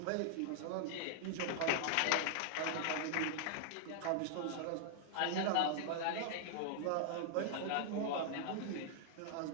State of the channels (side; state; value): both; different; correlation -0.01